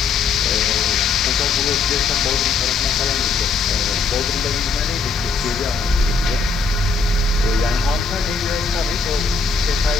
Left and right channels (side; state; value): right; quieter; 4.6 dB